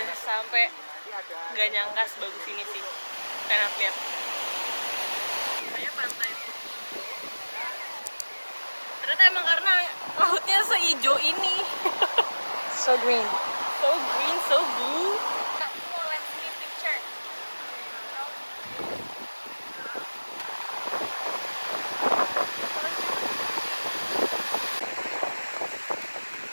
sampai, nggak nyangka sebagus ini sih. Enak lihat. Kayaknya pantai ternyata emang karena lautnya seijo ini. So green. So green, so blue.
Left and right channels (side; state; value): both; inverted; correlation -1.00